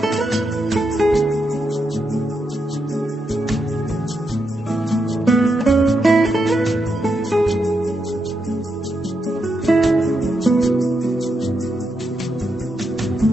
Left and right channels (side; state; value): both; normal; correlation 0.83